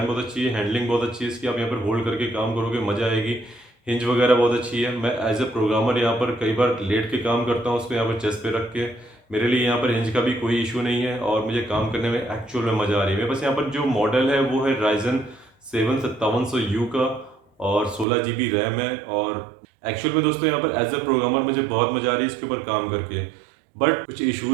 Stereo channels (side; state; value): left; drops out; at 18.1 s